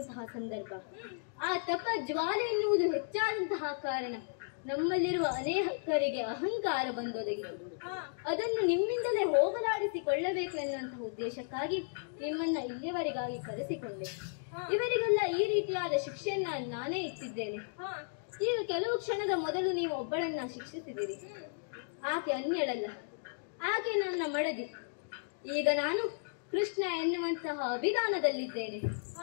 ಸಂದರ್ಭ. ಆ ತಪ ಜ್ವಾಲೆ ಎನ್ನುವುದು ಹೆಚ್ಚಾದಂತಹ ಕಾರಣ ನಮ್ಮಲ್ಲಿರುವ ಅನೇಕರಿಗೆ ಅಹಂಕಾರ ಬಂದೊದಗಿತು. ಅದನ್ನು ನಿಮ್ಮಿಂದಲೇ ಹೋಗಲಾಡಿಸಿಕೊಳ್ಳಬೇಕು ಎನ್ನುವಂತಹ ಉದ್ದೇಶಕ್ಕಾಗಿ ನಿಮ್ಮನ್ನ ಇಲ್ಲಿಯವರೆಗಾಗಿ ಕರೆಸಿಕೊಂಡೆ. ಇವರಿಗೆಲ್ಲ ಈ ರೀತಿಯಾದ ಶಿಕ್ಷೆಯನ್ನ ನಾನೇ ಇಟ್ಟಿದ್ದೇನೆ. ಈಗ ಕೆಲವು ಕ್ಷಣದ ಮೊದಲು ನೀವು ಒಬ್ಬಳನ್ನ ಶಿಕ್ಷಿಸಿದಿರಿ. ಆಕೆ ಅನ್ಯಳಲ್ಲ, ಆಕೆ ನನ್ನ ಮಡದಿ. ಈಗ ನಾನು ಕೃಷ್ಣ ಎನ್ನುವಂತಹ ಅಭಿಧಾನದಲ್ಲಿದ್ದೇನೆ.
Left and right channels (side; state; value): right; silent; digital silence